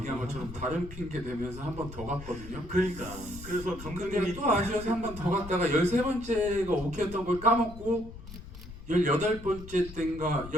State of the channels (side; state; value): left; noise; rumble, 13 dB below the sound